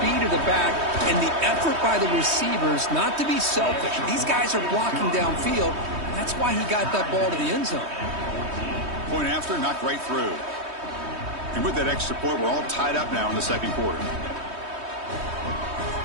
of the back and the effort by the receivers not to be selfish. These guys are blocking downfield. That's why he got that ball to the end zone. Point after, knocked right through. And with that extra point, we're all tied up now in the 2nd quarter.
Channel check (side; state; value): left; late; 3.2 ms